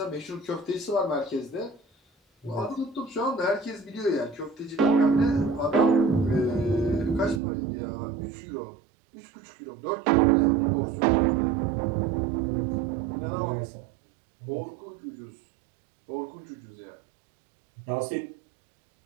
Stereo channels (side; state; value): left; drops out; at 7.4 s